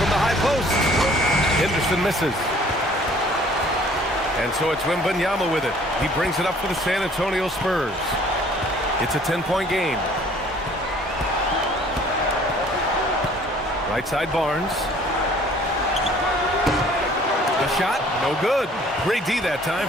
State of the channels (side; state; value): both; normal; correlation 0.55